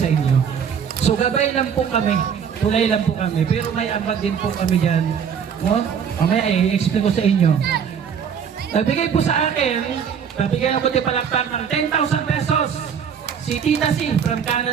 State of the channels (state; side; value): quieter; left; 7.4 dB